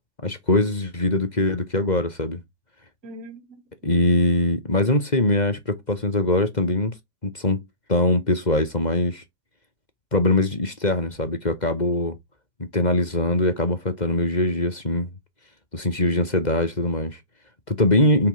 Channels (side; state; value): right; late; 2.0 ms